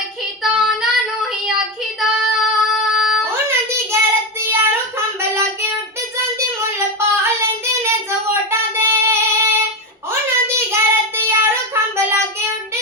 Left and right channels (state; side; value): normal; both; correlation 0.14